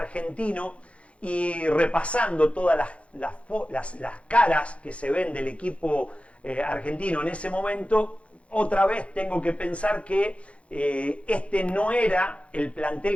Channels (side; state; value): right; late; 0.062 ms